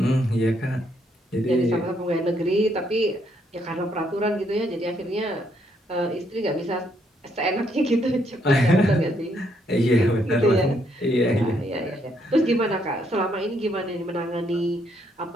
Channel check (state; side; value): normal; both; correlation 0.73